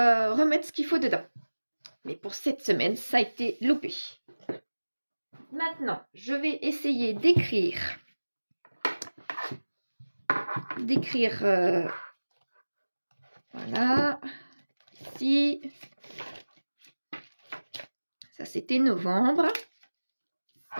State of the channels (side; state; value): both; inverted; correlation -1.00